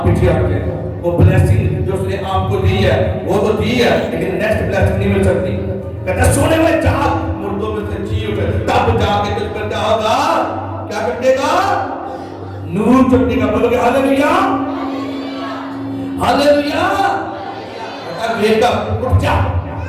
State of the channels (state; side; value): identical; both; correlation 1.00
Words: پیچھے ہٹ جائے گا۔ وہ بلیسنگ جو اس نے آپ کو دی ہے وہ تو دی ہے، لیکن نیکسٹ بلیسنگ نہیں مل سکتی۔ کہتا ہے سونے میں جاگ، مردوں میں سے جی اٹھے، تب جا کے تجھ پر کیا ہوگا، کیا چمکے گا، نور چمکے گا۔ بولو گے ہاللیلویا، ہاللیلویا۔ ویک اپ، اٹھ جا،